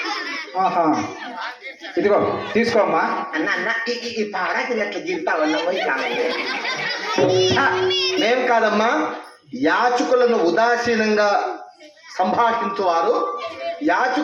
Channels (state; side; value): identical; both; correlation 1.00